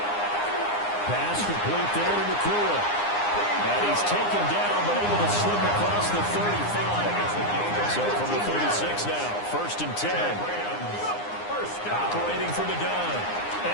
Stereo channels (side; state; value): right; late; 9.8 ms